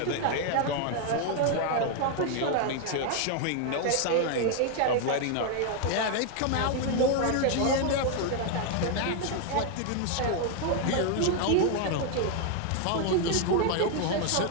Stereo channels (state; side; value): different; both; correlation 0.00